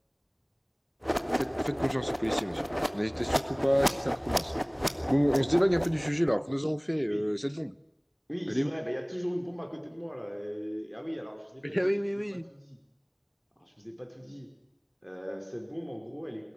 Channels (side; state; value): both; identical; correlation 1.00